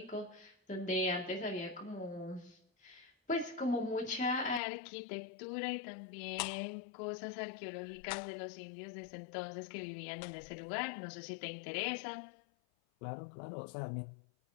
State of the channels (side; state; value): right; drops out; at 4.6 s